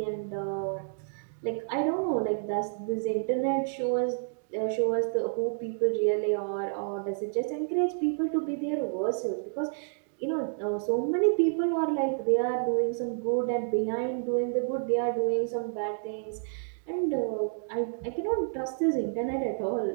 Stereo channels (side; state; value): left; silent; digital silence